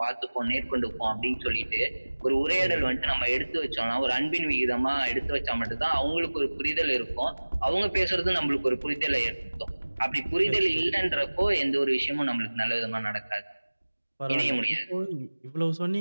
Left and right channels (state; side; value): inverted; both; correlation -1.00